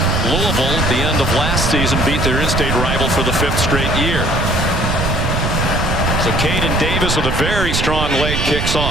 Louisville at the end of last season, beat their in-state rival for the 5th straight year. So Caden Davis with a very strong leg kicks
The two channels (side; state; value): right; noise; rumble, 1 dB below the sound